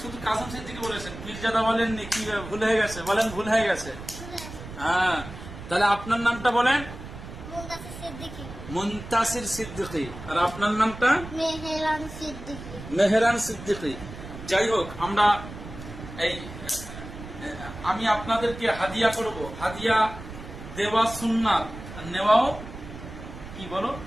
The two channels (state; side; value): noise; right; rumble, 12 dB below the sound